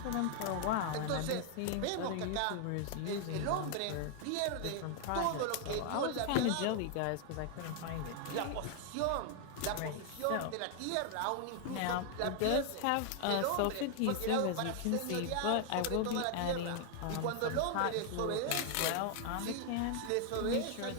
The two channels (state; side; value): different; both; correlation 0.00